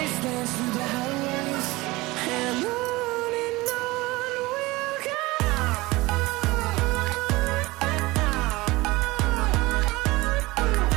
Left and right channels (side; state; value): left; quieter; 21.2 dB